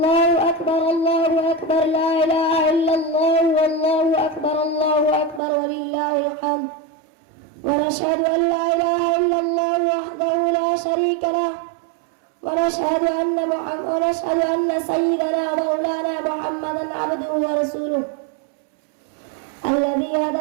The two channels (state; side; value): drops out; left; at 5.4 s